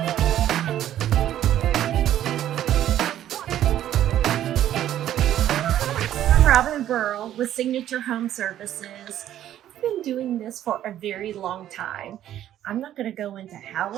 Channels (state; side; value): quieter; left; 11.8 dB